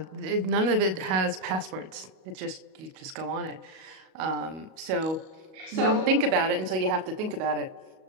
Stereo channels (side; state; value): left; late; 37 ms